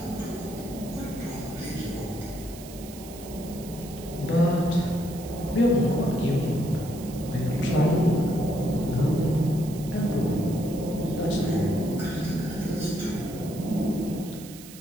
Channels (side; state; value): right; noise; hiss, 17 dB below the sound